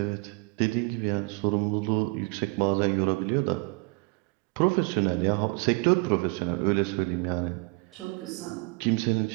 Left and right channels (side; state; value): left; quieter; 29.3 dB